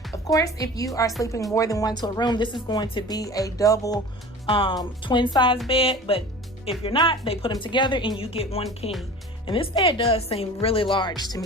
Of course, if you are sleeping more than one to a room, this is going to be a double twin size bed, but if you're not, they put them together and you get one king. And this bed does seem really large to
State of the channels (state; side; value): normal; both; correlation 0.39